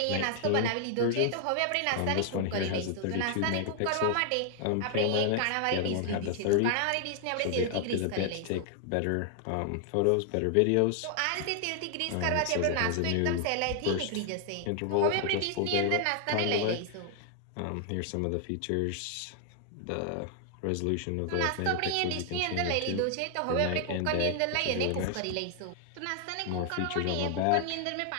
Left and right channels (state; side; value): different; both; correlation 0.00